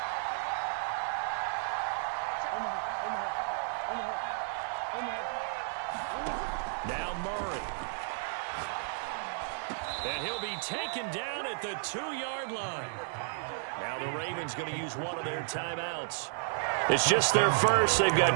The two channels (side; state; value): left; silent; digital silence